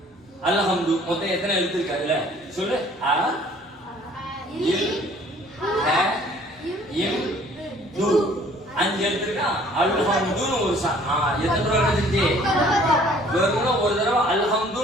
அல்ஹம்து மொத்தம் எத்தனை எழுத்து இருக்கு அதுல சொல்லு. அ இல் ஹ இம் து 5 எழுத்து இருக்கா? அல்ஹம்துன்னு ஒரு எத்தனை ரூபா கிடைச்சிருச்சு? வெறும் ஒரு தடவை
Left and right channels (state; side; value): normal; both; correlation 0.55